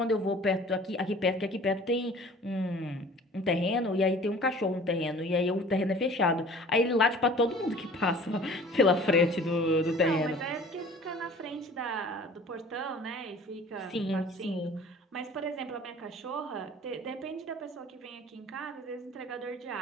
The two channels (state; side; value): normal; both; correlation 0.47